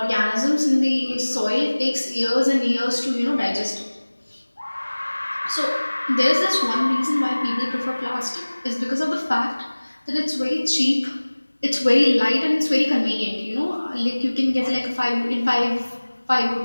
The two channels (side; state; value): both; inverted; correlation -1.00